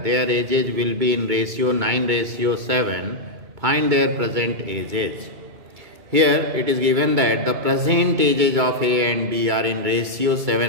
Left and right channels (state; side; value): late; left; 2.2 ms